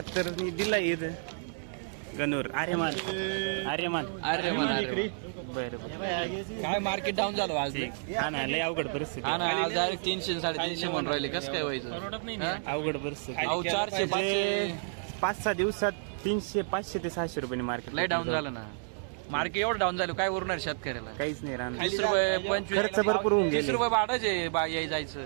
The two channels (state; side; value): silent; left; digital silence